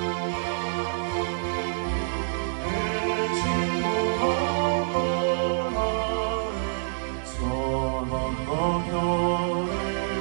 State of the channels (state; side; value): silent; left; digital silence